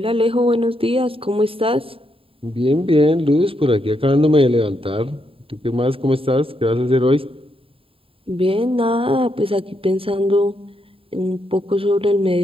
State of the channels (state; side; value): late; left; 0.27 ms